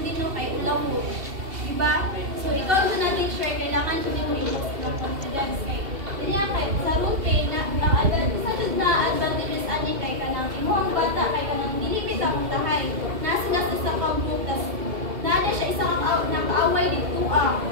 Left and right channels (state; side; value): late; left; 2.5 ms